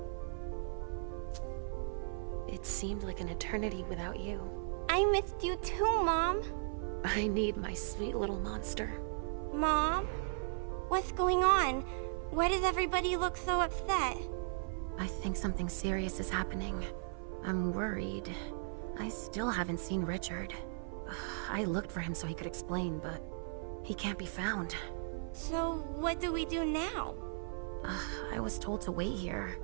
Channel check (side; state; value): left; silent; 53 dB below the other